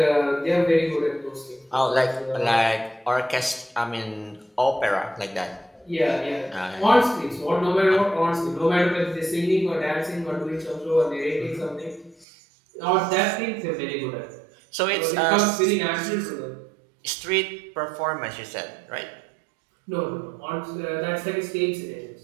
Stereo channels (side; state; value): left; drops out; at 12.2 s